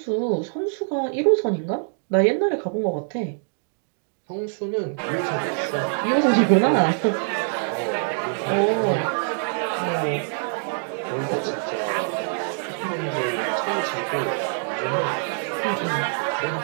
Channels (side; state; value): left; silent; digital silence